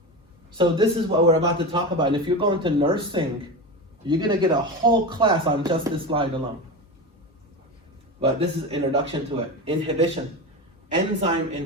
So this is what we're about to talk about. And if you're going to nursing, you're gonna get a whole class on just this slide alone. But this is introduction to it. Inhibition, enzyme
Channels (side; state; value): both; normal; correlation 0.23